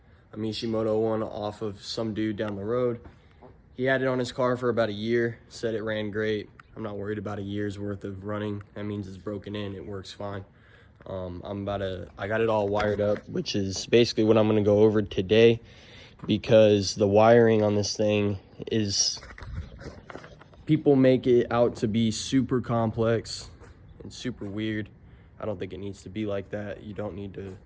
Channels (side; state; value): both; identical; correlation 1.00